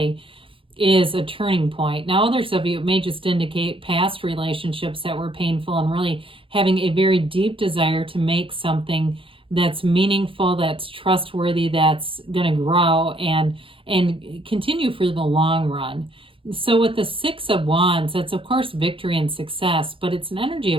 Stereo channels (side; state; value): left; late; 0.26 ms